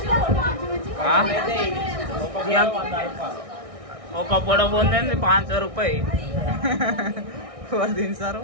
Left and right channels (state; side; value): late; left; 1.6 ms